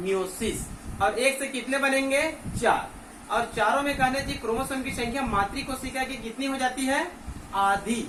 और एक से कितने बनेंगे, 4। और चारों में कहने चाहिए क्रोमोसोम की संख्या मातृ कोशिका की कितनी हो जाती है, आधी।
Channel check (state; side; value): identical; both; correlation 1.00